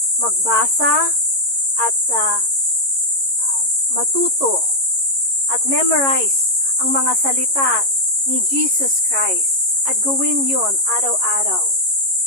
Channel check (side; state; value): left; late; 11 ms